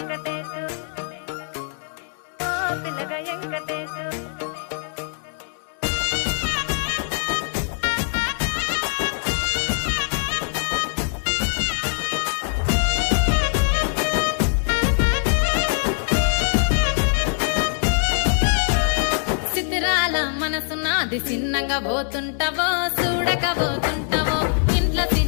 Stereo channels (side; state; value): right; silent; 58 dB below the other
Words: ఓ పిల్లగా వెంకటేశు మనసు నాది చిన్నగా పోతుంటావో చూడక పోతుంటావో ఇంట్లో